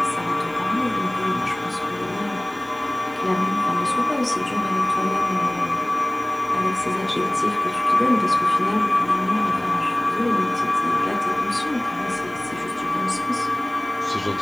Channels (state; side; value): noise; left; hiss, 28 dB below the sound